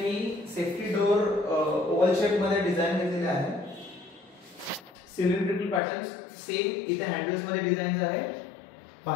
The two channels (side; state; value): right; drops out; at 5.8 s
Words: सेफ्टी डोर ओव्हल शेप मध्ये डिझाइन केलेले आहे। सिलेंड्रिकल पॅटर्न्स सेम इथे हँडल्स मध्ये डिझाइन आहे।